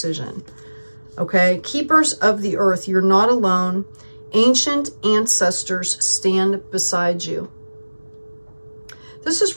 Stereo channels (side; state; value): both; inverted; correlation -1.00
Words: Okay. Keepers of the earth, you're not alone. Ancient ancestors stand beside you. This is